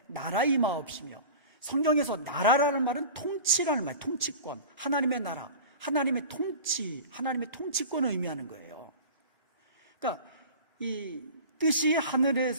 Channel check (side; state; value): both; inverted; correlation -0.37